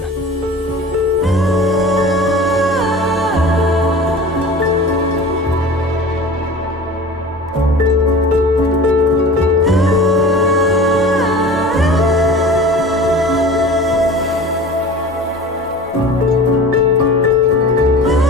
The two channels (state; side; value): normal; both; correlation 0.39